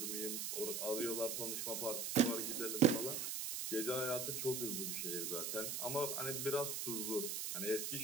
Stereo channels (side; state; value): right; noise; hiss, 2 dB below the sound